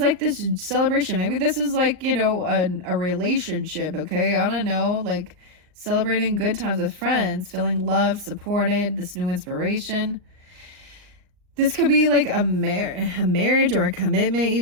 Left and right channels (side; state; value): left; late; 39 ms